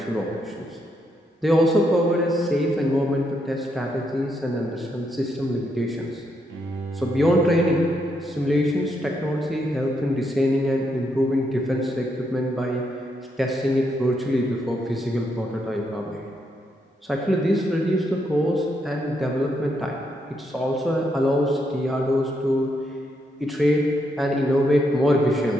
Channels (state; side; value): normal; both; correlation 0.78